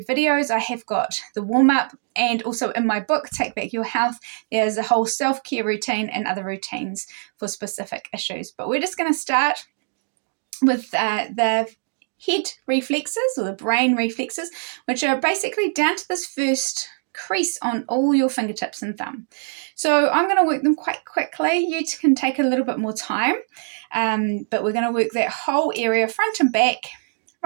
videos. I have got the warm-up, and also in my book, Take Back Your Health, there's a whole self-care routine and other routines for specific issues. But we're just going to start with the head reflexes, or the brain reflexes, which are basically down to this first crease on all your fingertips and thumb. So I'm going to work them quite quickly. You can take a little bit more time, but we're going to work that whole area front and back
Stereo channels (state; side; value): silent; left; 64 dB below the other